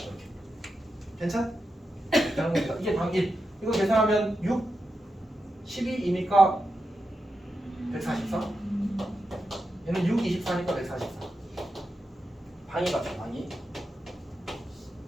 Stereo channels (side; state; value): both; normal; correlation 0.88